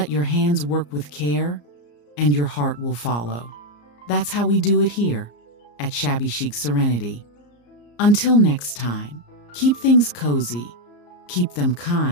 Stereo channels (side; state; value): right; late; 34 ms